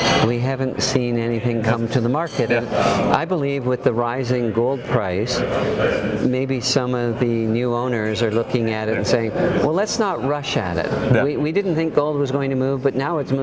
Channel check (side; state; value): both; identical; correlation 1.00